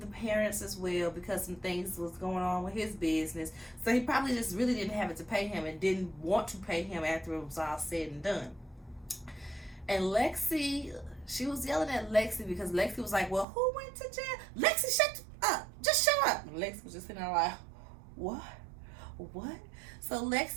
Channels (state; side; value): drops out; left; at 13.5 s